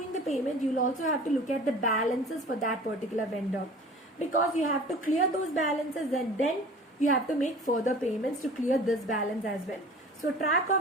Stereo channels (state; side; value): normal; both; correlation 0.43